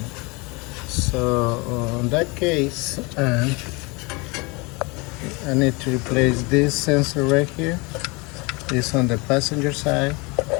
So in that case, I need to replace this sensor right here. It's on the passenger side,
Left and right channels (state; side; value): quieter; right; 27.4 dB